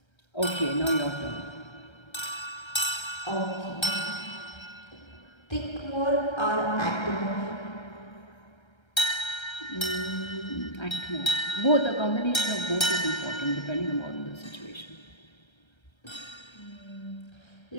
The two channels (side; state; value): right; late; 1.3 ms